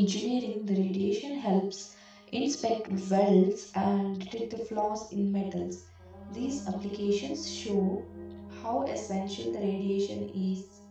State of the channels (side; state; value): both; identical; correlation 1.00